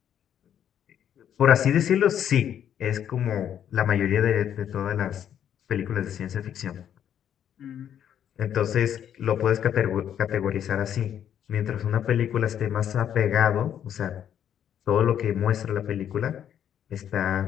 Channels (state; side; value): quieter; right; 9.6 dB